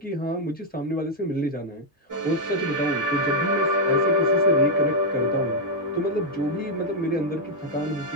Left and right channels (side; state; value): both; normal; correlation -0.01